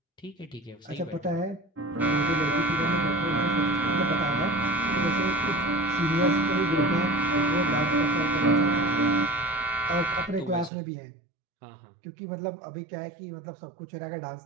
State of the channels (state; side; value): drops out; left; at 10.7 s